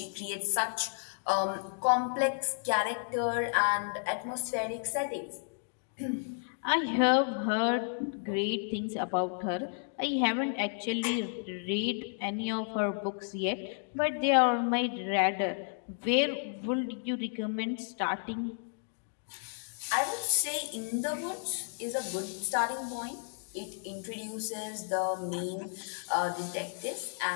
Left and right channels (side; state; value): right; silent; digital silence